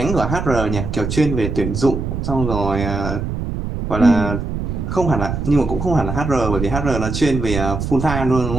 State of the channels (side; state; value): right; noise; rumble, 4 dB below the sound